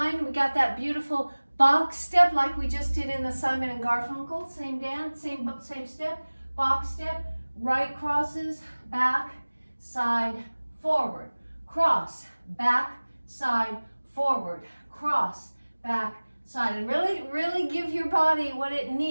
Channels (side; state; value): both; inverted; correlation -1.00